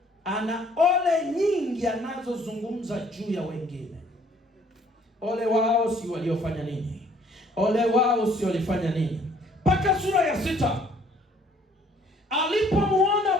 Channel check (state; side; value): normal; both; correlation 0.60